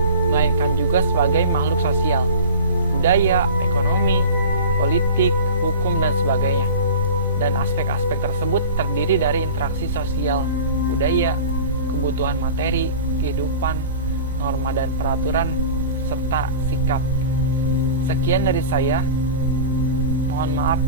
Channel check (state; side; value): inverted; both; correlation -0.37